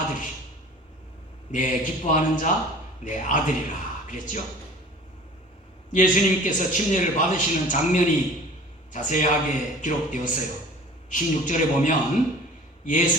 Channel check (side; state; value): both; normal; correlation 0.44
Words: 내 기뻐하는 자 내 아들이라 그랬죠. 예수님께서 침례를 받으시는 장면이 자세하게 기록되었어요. 16절에 보면